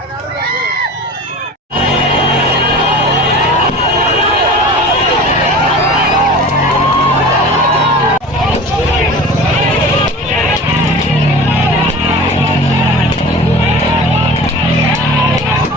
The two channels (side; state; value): both; normal; correlation 0.37